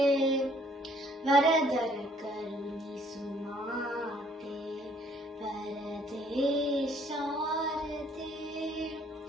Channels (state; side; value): normal; both; correlation 0.62